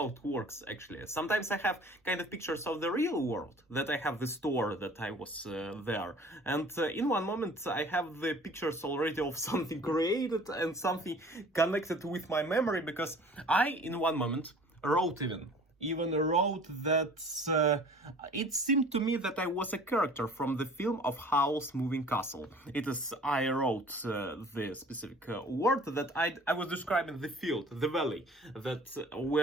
it works actually. Sometimes I have kind of pictures of the real world, that I have the store that I was there, and in one moment I have the pictures already of something created and something connected with my memory, because I in one moment wrote even wrote that it seemed to me that I was a character from the film of Howl's Moving Castle. It is, I wrote the specific word that I was describing the field, the valley, that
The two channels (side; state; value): both; normal; correlation 0.48